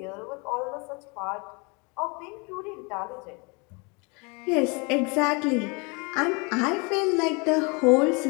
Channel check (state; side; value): quieter; right; 30.6 dB